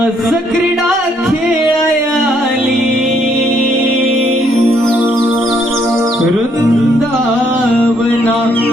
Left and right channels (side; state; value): both; normal; correlation 0.69